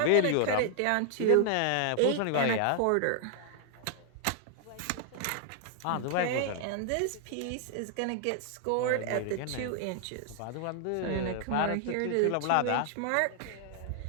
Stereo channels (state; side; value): different; both; correlation 0.00